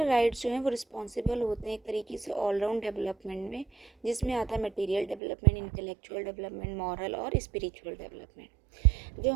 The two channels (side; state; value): left; drops out; at 5.2 s